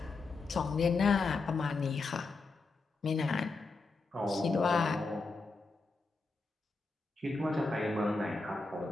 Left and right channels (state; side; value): quieter; right; 3.9 dB